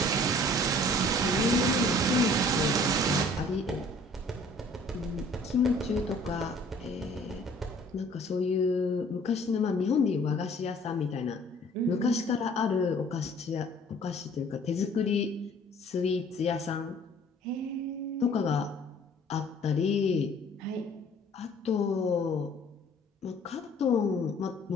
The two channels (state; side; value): normal; both; correlation 0.53